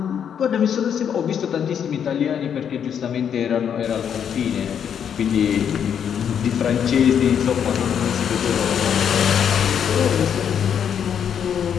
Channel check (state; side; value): quieter; right; 8.3 dB